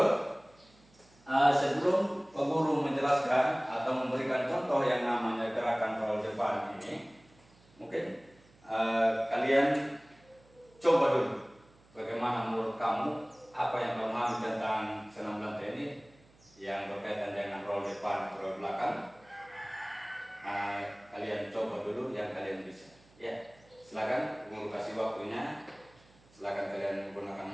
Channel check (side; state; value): right; noise; hum, 29 dB below the sound